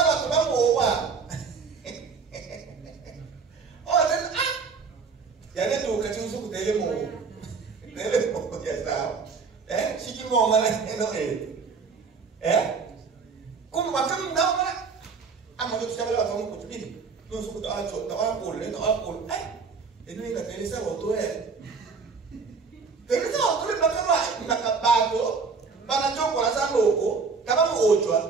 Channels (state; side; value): quieter; left; 5.1 dB